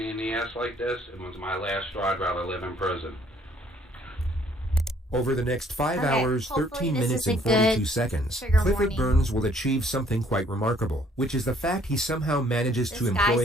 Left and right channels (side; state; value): both; normal; correlation 0.62